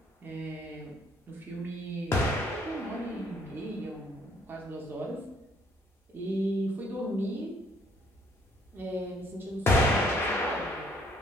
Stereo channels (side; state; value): both; normal; correlation 0.64